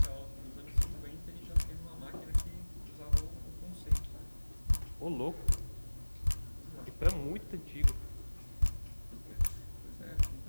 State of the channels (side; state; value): both; inverted; correlation -1.00